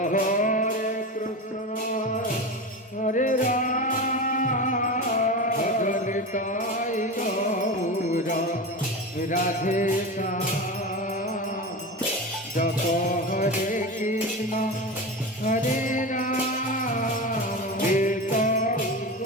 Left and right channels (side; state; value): both; normal; correlation 0.24